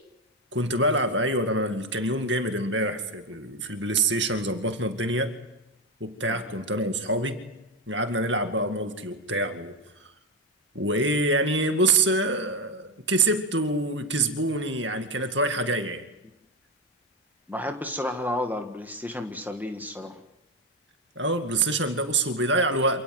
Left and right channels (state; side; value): normal; both; correlation 0.10